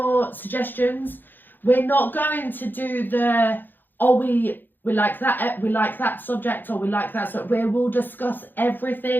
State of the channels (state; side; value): late; right; 0.091 ms